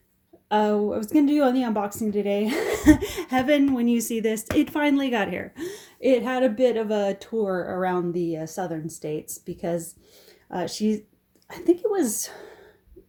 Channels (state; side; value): identical; both; correlation 1.00